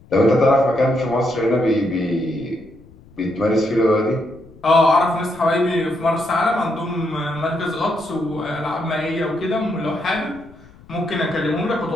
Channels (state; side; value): noise; left; rumble, 24 dB below the sound